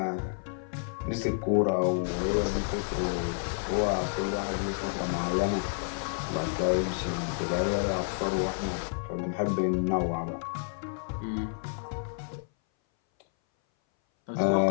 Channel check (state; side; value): silent; right; 58 dB below the other